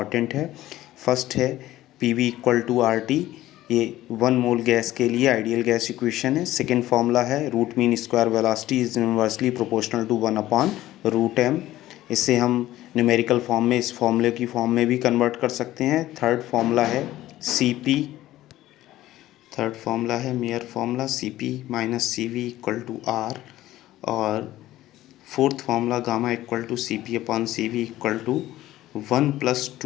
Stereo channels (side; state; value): right; quieter; 15.1 dB